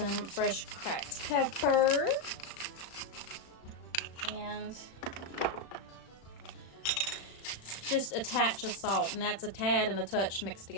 fresh cracked pepper. And just a touch of salt. And that's a tad and a touch mixed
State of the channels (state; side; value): late; right; 36 ms